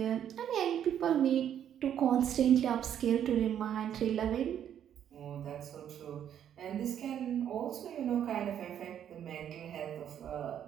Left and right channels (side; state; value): left; quieter; 9.7 dB